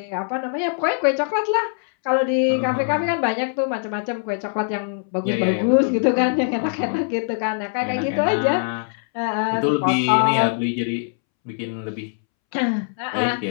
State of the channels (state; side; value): silent; right; 64 dB below the other